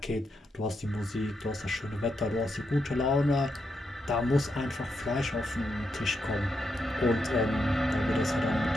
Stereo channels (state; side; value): normal; both; correlation 0.83